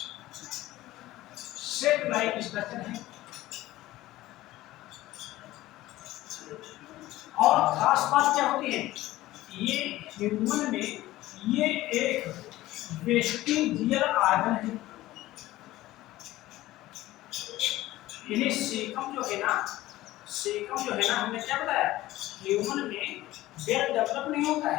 है। और खास बात क्या होती है, ये ह्यूमन में ये एक वेस्टिजियल ऑर्गन है। ये सीकम जो है ना, हमने क्या बताया, ह्यूमन में वेल डेवलप नहीं होता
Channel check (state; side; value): quieter; right; 16.5 dB